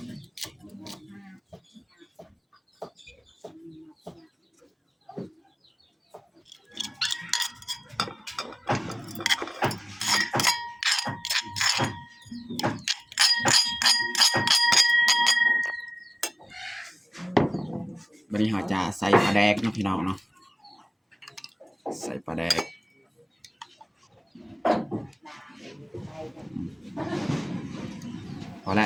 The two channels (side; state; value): both; identical; correlation 1.00